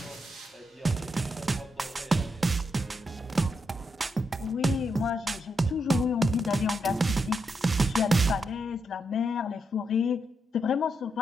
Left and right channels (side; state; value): both; normal; correlation 0.82